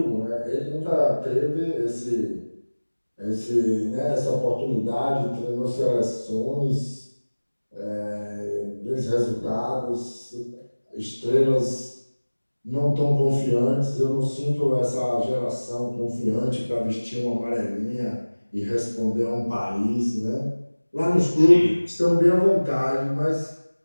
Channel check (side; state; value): both; inverted; correlation -1.00